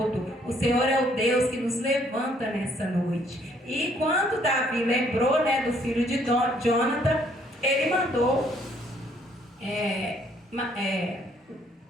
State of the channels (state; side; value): normal; both; correlation 0.65